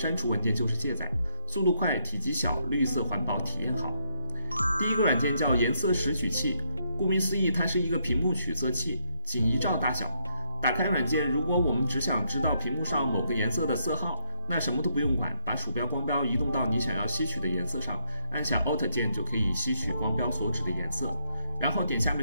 除文件就是卸载，速度快，体积小，绿色环保，体验好。第一个软件叫颜色识取器，顾名思义，它是一个屏幕取色器，仅1兆大小。打开软件，如果我们只想知道屏幕上某个颜色的色号，那什么都不用管，把鼠标光标移动到你想要吸取的颜色上，按下 Alt 键就可以吸取光标所指的颜色，然后点下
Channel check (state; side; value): inverted; both; correlation -0.73